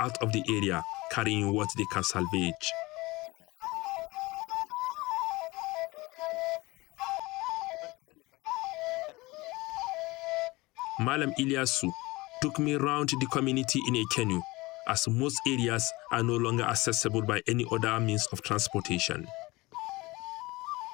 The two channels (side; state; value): right; quieter; 21.8 dB